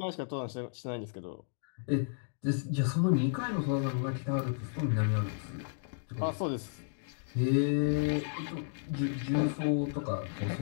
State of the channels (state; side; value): silent; right; digital silence